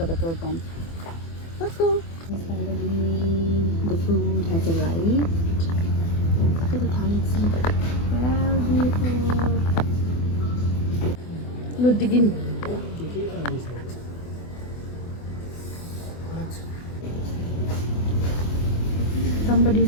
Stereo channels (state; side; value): late; right; 24 ms